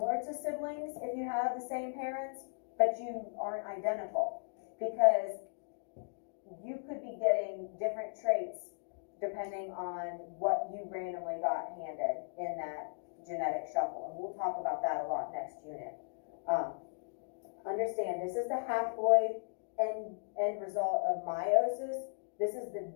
to siblings if you have the same parents, but you aren't identical, because you could be getting different traits depending on what you randomly got handed in that genetic shuffle. And we'll talk about that a lot next unit. Understand, this is the haploid end result of meiosis. This is the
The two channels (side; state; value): right; silent; digital silence